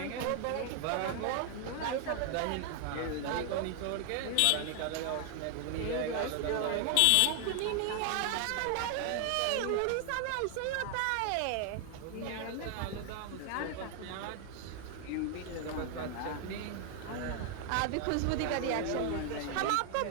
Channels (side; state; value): both; different; correlation 0.00